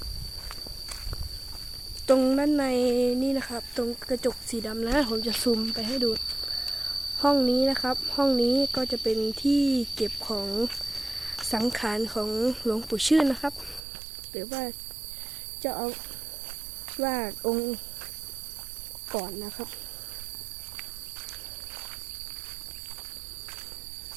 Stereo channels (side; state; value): left; drops out; at 13.8 s